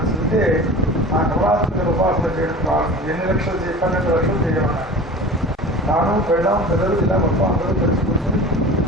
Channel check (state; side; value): normal; both; correlation 0.36